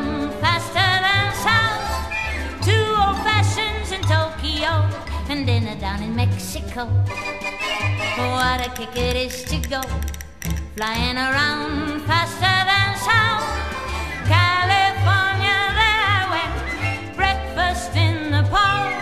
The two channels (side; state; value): both; identical; correlation 1.00